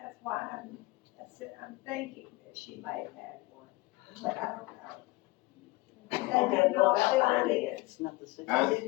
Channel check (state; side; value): quieter; right; 21.3 dB